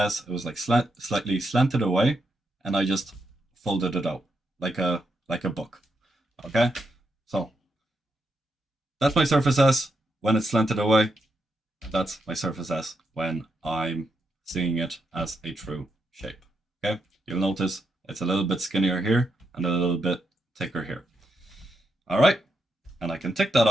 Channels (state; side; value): normal; both; correlation 0.82